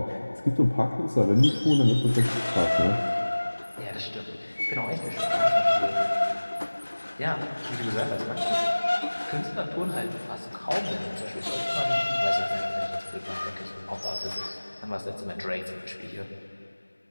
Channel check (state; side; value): inverted; both; correlation -1.00